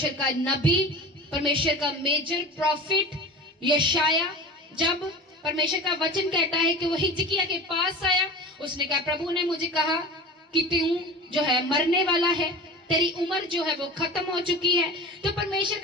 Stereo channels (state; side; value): normal; both; correlation 0.34